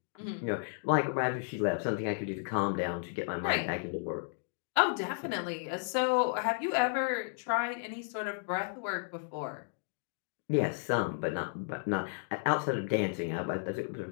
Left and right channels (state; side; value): silent; right; 56 dB below the other